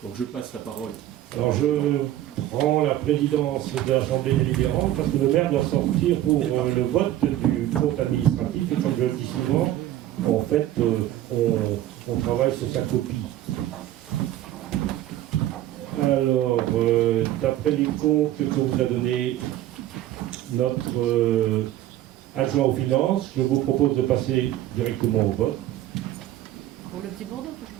Donc, je passe la parole. Alors je prends la présidence de l'Assemblée délibérante parce que le maire doit sortir pour le vote du compte administratif et comme je le dis souvent, en fait, on travaille sur sa copie. Alors, d'après les comptes que vous a donné notre adjoint aux finances, je vous propose de passer directement au vote. Pour le Petit Bordeaux,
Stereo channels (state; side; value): quieter; left; 13.5 dB